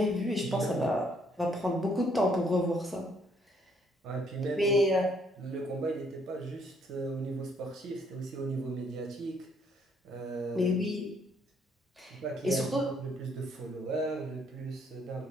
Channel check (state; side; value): normal; both; correlation 0.68